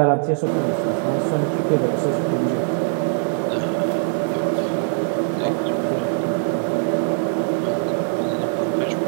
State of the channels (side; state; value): left; silent; 61 dB below the other